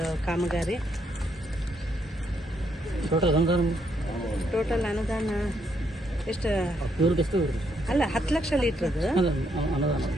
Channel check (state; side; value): normal; both; correlation 0.75